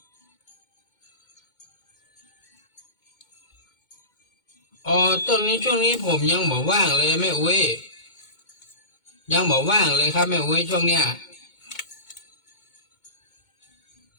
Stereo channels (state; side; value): late; right; 2.2 ms